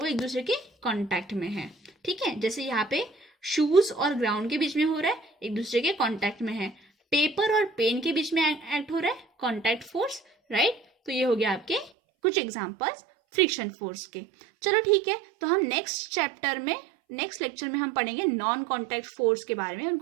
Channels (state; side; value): drops out; left; at 11.9 s